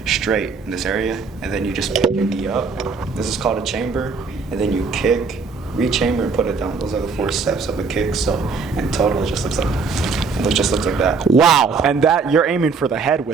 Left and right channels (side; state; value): left; quieter; 4.8 dB